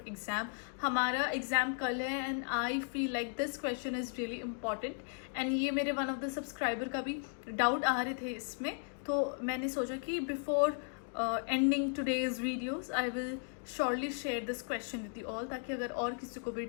हमारा एग्जाम कल है and I feel like this question is really important and ये मेरे वन ऑफ द सब्सक्राइबर का भी डाउट आ रहे थे इसमें, तो मैंने सोचा कि before ending today's videos I will surely share this question with you all, ताकि अगर और किसी को भी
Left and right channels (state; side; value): silent; right; 54 dB below the other